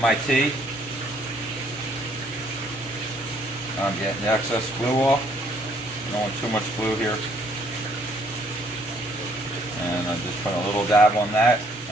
T. I'm getting the excess glue off. I don't want too much glue here. And I'm just putting a little dab on that,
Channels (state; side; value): normal; both; correlation 0.65